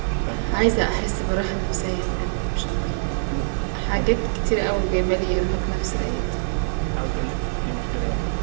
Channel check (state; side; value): silent; left; digital silence